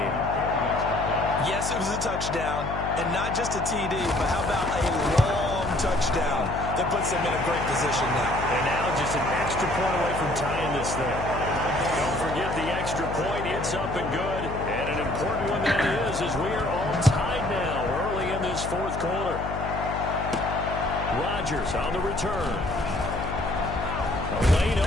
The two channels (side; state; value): left; noise; hum, 6 dB below the sound